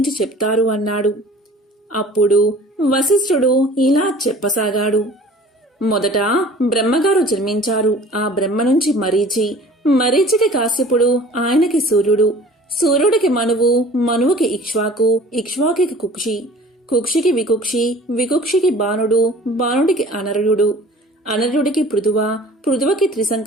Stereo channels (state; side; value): normal; both; correlation 0.46